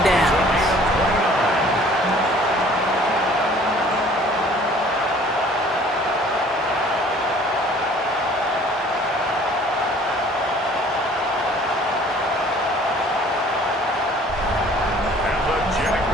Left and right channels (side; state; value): both; normal; correlation 0.53